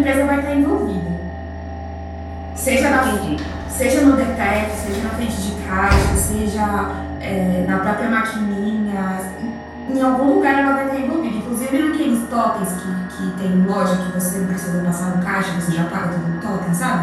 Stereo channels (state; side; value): identical; both; correlation 1.00